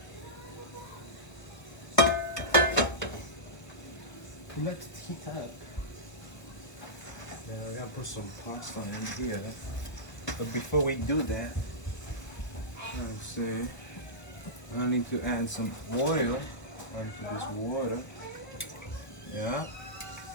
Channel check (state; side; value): late; right; 1.0 ms